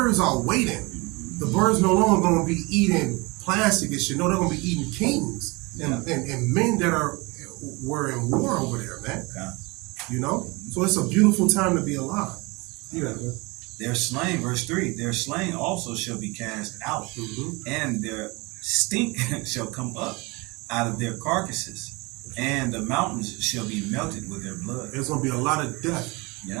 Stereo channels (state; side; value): quieter; left; 25.8 dB